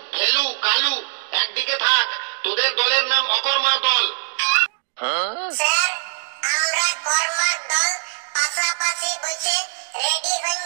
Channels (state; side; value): silent; left; digital silence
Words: ফেলু, কালু একদিকে থাক, তোদের দলের নাম অকর্মার দল। স্যার, আমরা কর্মার দল পাশাপাশি বসে রেডি হয়ে